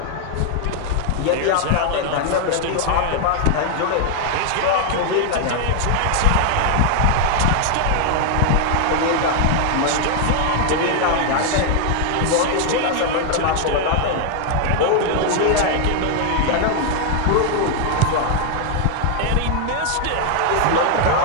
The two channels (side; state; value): both; different; correlation 0.00